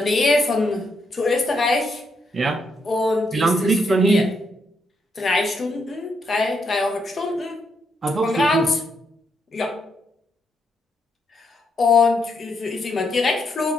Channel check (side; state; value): both; normal; correlation 0.78